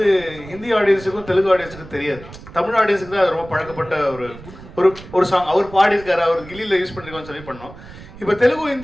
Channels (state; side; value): noise; right; rumble, 17 dB below the sound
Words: ஹிந்தி ஆடியன்ஸுக்கும் தெலுங்கு ஆடியன்ஸுக்கும் தெரியாது. தமிழ் ஆடியன்ஸுக்கு தான் அது ரொம்ப பழக்கப்பட்ட ஒரு சாங். அவர் பாடியிருக்காரு, அவர் கில்லியில யூஸ் பண்ணிருக்கோம்னு சொல்லி பண்ணோம். இப்போ தெலுங்கு